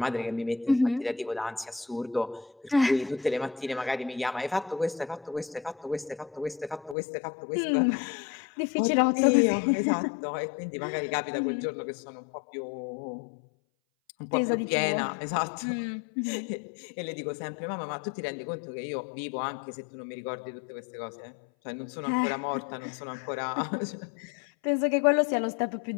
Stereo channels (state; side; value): drops out; right; at 7.0 s